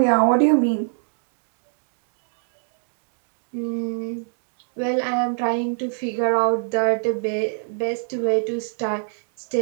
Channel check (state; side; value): silent; left; digital silence